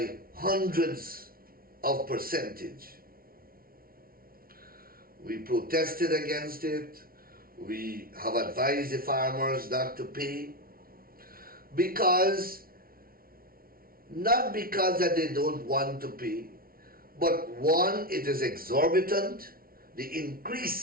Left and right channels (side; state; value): left; late; 0.43 ms